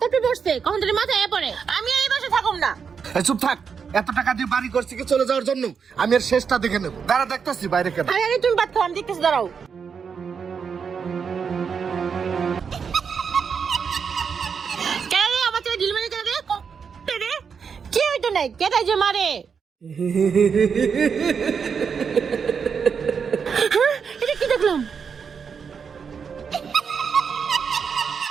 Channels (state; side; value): quieter; left; 6.3 dB